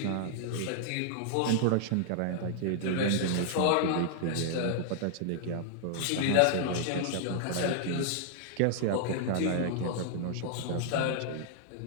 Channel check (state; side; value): different; both; correlation -0.01